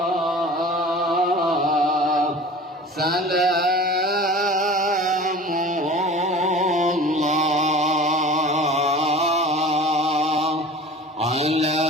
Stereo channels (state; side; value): normal; both; correlation 0.40